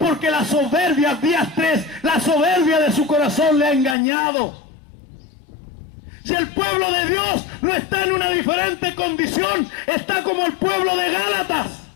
la soberbia, días 3, la soberbia de su corazón le ha engañado. Y el pueblo de Dios no está en una diferente condición, está como el pueblo de Gálatas.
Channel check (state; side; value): drops out; right; at 4.0 s